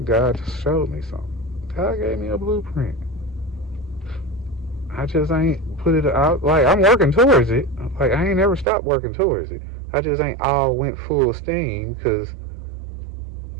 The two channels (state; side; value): drops out; left; at 8.7 s